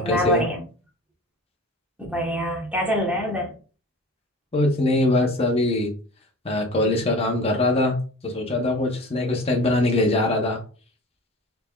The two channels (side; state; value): both; normal; correlation 0.38